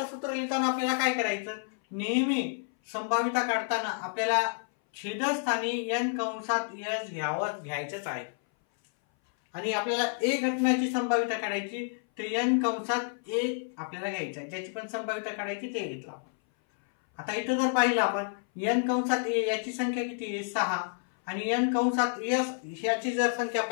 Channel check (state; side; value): silent; right; 58 dB below the other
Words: सूत्र लिहिताना आपल्याला काय करायचं, नेहमी संभाव्यता काढताना आपल्याला छेदस्थानी n कंसात s घ्यायचंच आहे. आणि आपल्याला a घटनाची संभाव्यता काढायची, तर n कंसात a आपल्याला घ्यायचं आहे. ज्याची पण संभाव्यता काढायची ते घेतलं आपण. आता इथं जर पाहिलं आपण n कंसात a याची संख्या किती आहे, 6. आणि n कंसात s ह्याची जर संख्या